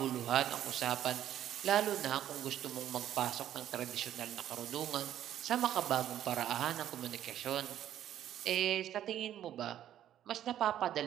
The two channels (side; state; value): left; quieter; 11.4 dB